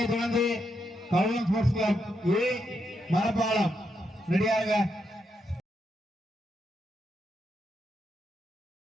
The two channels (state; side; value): normal; both; correlation 0.81